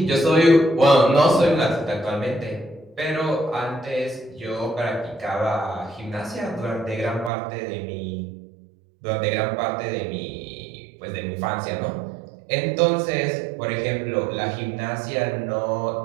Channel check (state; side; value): drops out; left; at 7.3 s